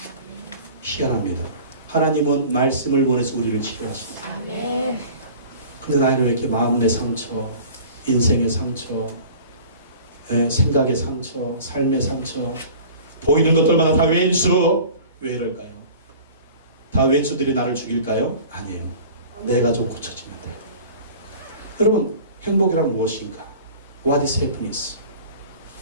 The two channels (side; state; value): both; inverted; correlation -0.43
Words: 희한합니다. 하나님은 말씀을 원해서 우리를 치료하십니다. 아멘. 근데 나는 왜 이렇게 마음의 상처, 인생의 상처, 생각의 상처, 삶의 상처, 보이는 것들마다 다 왼수. 왜 이럴까요? 다 왼수들이 나를 죽일까요? 아니에요. 내가 좀 고쳐지면 돼요. 여러분 행복이란 무엇인가? What is happiness?